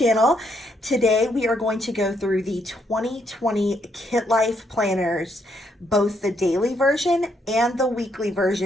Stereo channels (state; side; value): normal; both; correlation 0.74